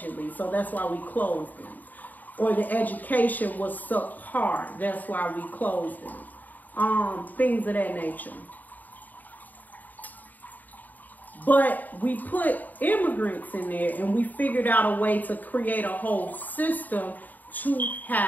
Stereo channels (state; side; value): late; right; 0.083 ms